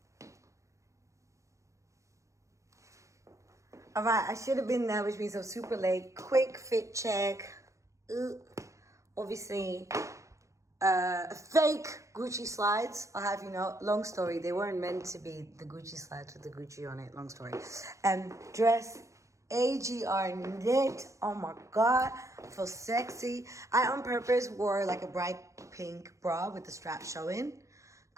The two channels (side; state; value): left; late; 0.15 ms